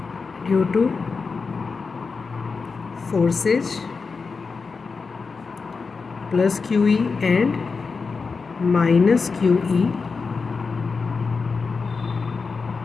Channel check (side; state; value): right; quieter; 4.7 dB